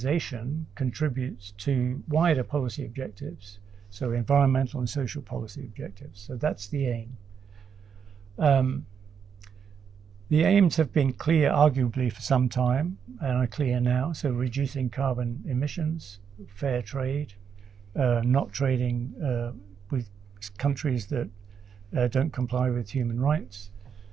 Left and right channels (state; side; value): quieter; left; 7.2 dB